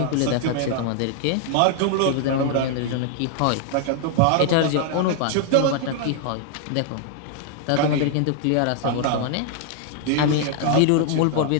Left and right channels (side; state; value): both; different; correlation 0.00